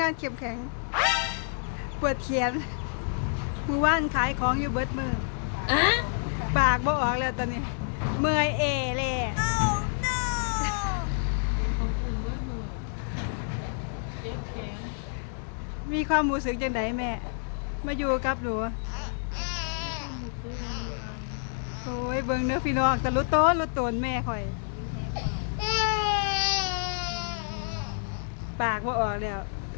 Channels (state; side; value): silent; right; 59 dB below the other